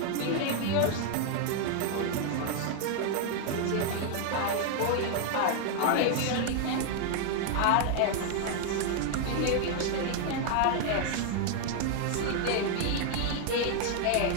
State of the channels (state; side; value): different; both; correlation 0.00